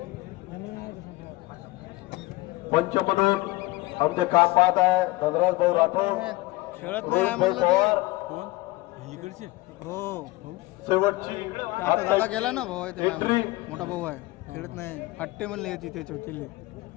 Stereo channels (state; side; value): quieter; right; 20.4 dB